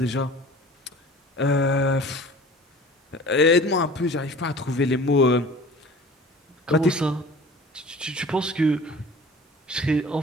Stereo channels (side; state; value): both; normal; correlation 0.43